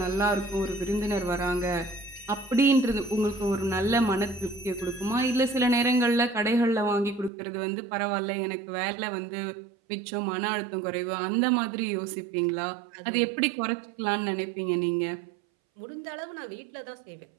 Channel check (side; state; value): left; drops out; at 7.3 s